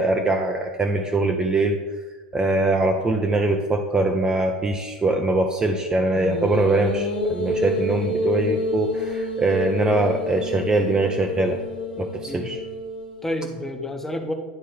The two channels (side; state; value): both; normal; correlation 0.59